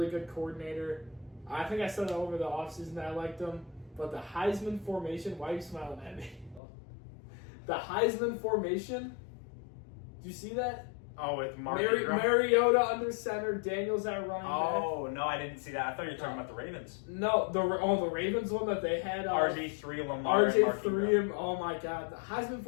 good coordinator. I think I said it over the offseason that I liked him. But the Heisman formation, why are you smiling at me? The Heisman formation, do you see that? Oh, with Mariota under center, Daniels at running back. Oh, no, I didn't see that. I thought you were talking about the Ravens. No, the Ravens one that they had. RG3, Lamar, RG3, and oh my God. The Heisman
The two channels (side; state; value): right; drops out; at 6.6 s